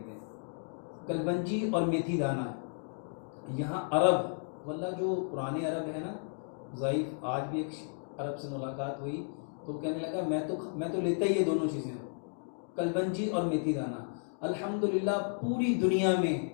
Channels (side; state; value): right; silent; digital silence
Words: कलवंजी और मेथी दाना। यहाँ अरब वल्ला जो पुराने अरब है ना, ज़ईफ़, आज भी एक अरब से मुलाकात हुई तो कहने लगा मैं तो लेता ही ये दोनों चीज़ें, कलवंजी और मेथी दाना। अल्हम्दुलिल्लाह पूरी दुनिया में